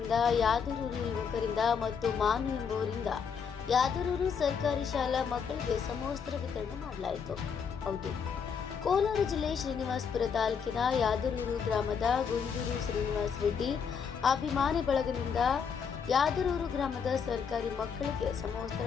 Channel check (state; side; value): quieter; right; 6.6 dB